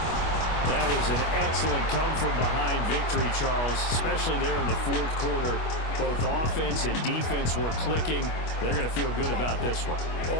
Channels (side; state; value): right; late; 25 ms